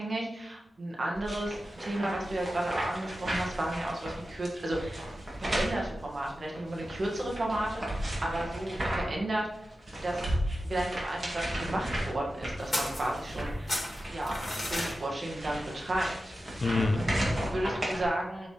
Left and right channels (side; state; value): both; normal; correlation 0.92